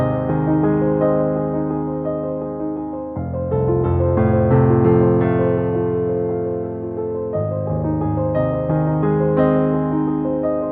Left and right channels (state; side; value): identical; both; correlation 1.00